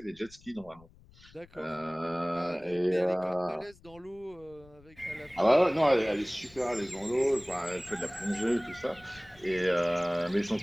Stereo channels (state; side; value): noise; left; rumble, 25 dB below the sound